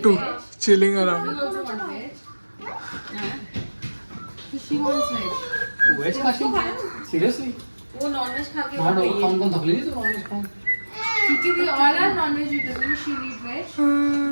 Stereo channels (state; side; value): inverted; both; correlation -1.00